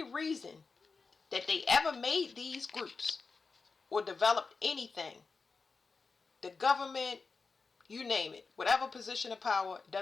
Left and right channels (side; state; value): right; quieter; 4.5 dB